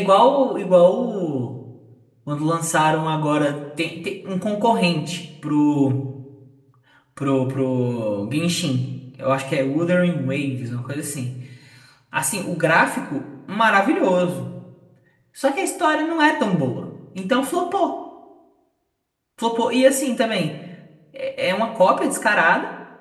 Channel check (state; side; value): identical; both; correlation 1.00